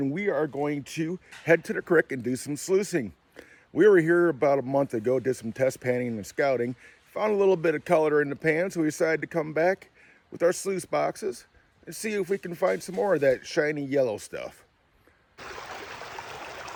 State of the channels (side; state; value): both; identical; correlation 1.00